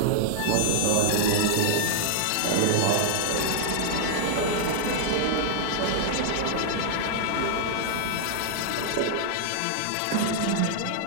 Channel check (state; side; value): different; both; correlation -0.01